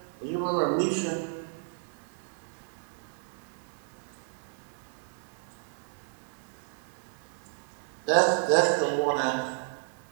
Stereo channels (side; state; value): left; silent; digital silence